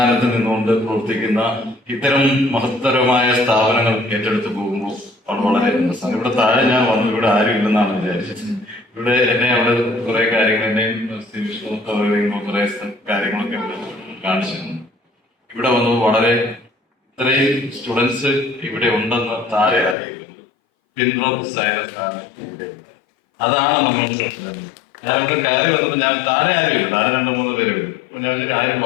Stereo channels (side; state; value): right; drops out; at 20.0 s